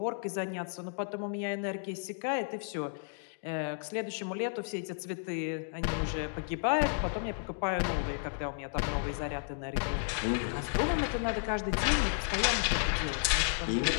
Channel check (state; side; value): silent; right; digital silence